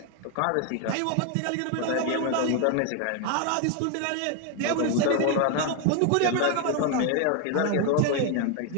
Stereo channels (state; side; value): different; both; correlation 0.01